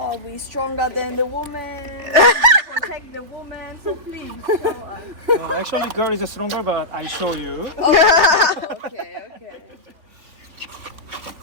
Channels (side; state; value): left; late; 3.4 ms